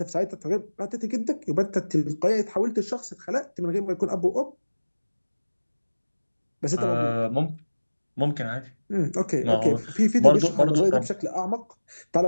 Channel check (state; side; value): inverted; both; correlation -1.00